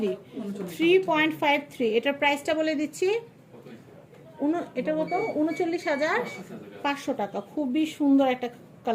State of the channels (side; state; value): both; identical; correlation 1.00